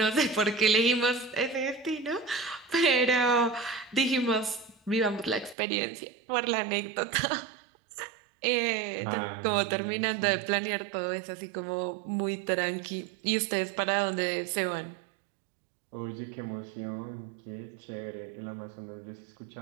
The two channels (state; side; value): drops out; left; at 5.6 s